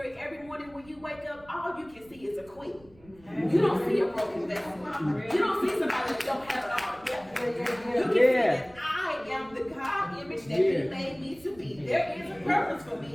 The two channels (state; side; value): noise; right; rumble, 25 dB below the sound